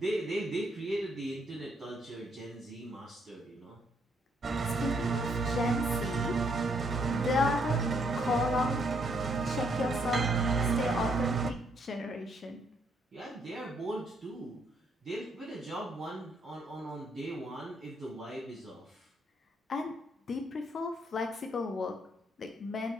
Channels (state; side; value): normal; both; correlation 0.71